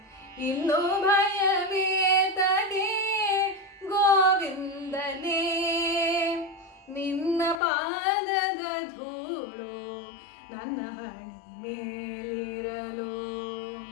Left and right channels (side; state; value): right; drops out; at 7.6 s